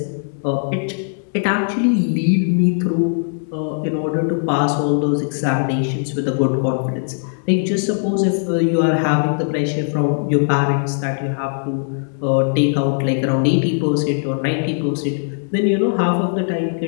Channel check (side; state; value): right; silent; digital silence